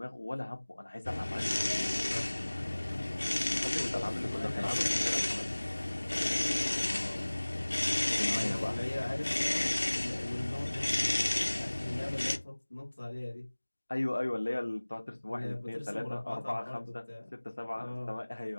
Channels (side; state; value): both; inverted; correlation -1.00